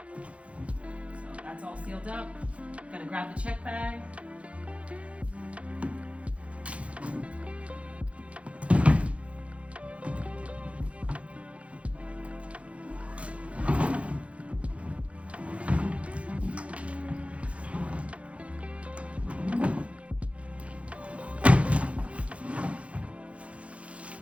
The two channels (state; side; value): late; left; 0.063 ms